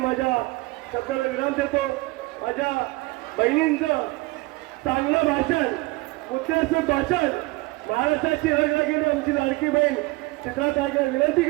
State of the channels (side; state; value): left; quieter; 22.5 dB